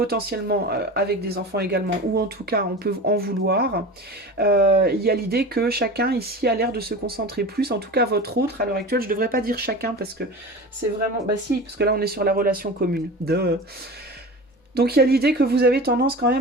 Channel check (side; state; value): both; normal; correlation 0.33